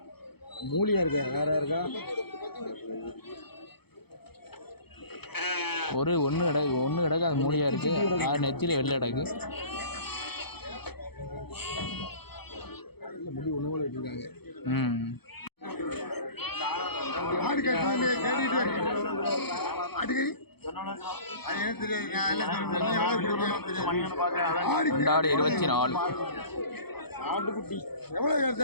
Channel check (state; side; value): late; right; 0.97 ms